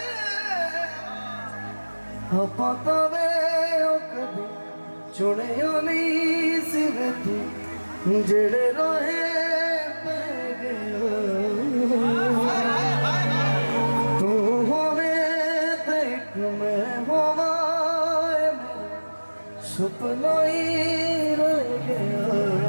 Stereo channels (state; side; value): inverted; both; correlation -1.00